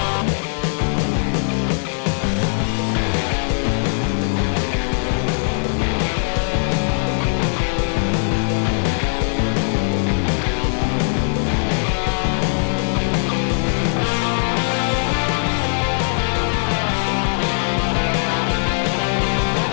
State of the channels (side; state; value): right; silent; digital silence